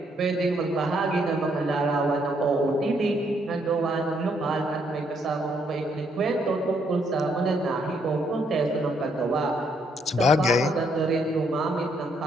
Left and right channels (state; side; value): normal; both; correlation 0.72